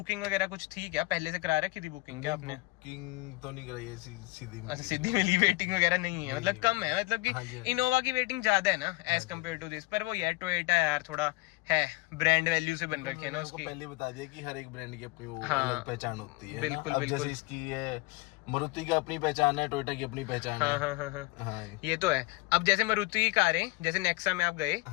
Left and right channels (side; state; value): right; quieter; 22.3 dB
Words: वगैरह कुछ थी क्या? पहले से करा रखी थी बुकिंग क्या आपने? बुकिंग तो नहीं कराई है, सीधी अच्छा, सीधी मिली, वेटिंग वगैरह नहीं है, मतलब नहीं, कम है, मतलब हाँ जी, कि हाँ जी। इनोवा की वेटिंग ज्यादा है ना एज कम्पेयर टू दिस, पर वो यार टोयोटा यार थोड़ा है, ब्रांड वैल्यू से बन रखी है ना मैंने आपको उसकी। पहले बता दिया कि हर एक ब्रांड की अपनी वो हाँ, अलग पहचान होती है। बिल्कुल, ना? अब बिल्कुल। जैसे इसकी है, मारुति की अपनी पहचान है, टोयोटा की अपनी पहचान हाँ है। हाँ हाँ हाँ, हाँ ये तो है। अब जैसे मारुति की कारें, जैसे नेक्सा में आप गए,